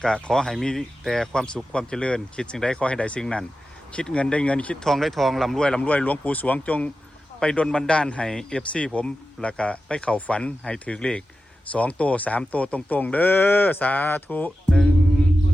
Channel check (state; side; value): normal; both; correlation 0.92